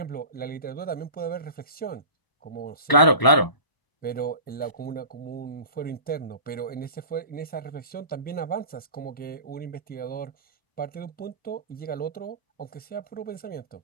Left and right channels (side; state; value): right; late; 1.0 ms